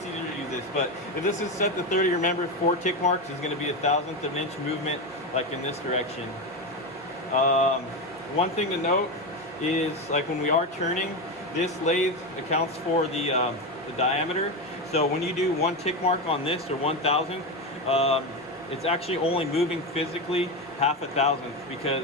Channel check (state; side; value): normal; both; correlation 0.15